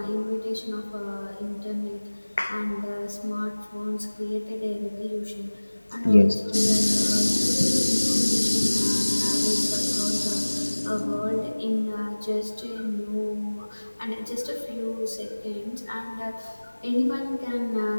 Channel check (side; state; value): both; inverted; correlation -1.00